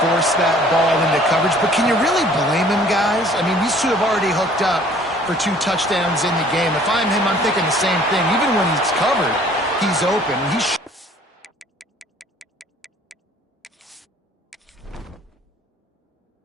forced that ball into coverage. But can you really blame him, guys? I mean, these two have already hooked up for 2 touchdowns in the game. If I'm him, I'm thinking the same thing. Even when he's covered, he's open.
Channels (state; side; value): normal; both; correlation 0.55